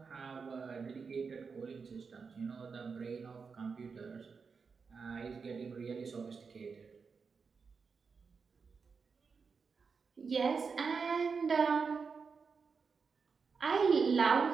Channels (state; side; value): quieter; left; 5.3 dB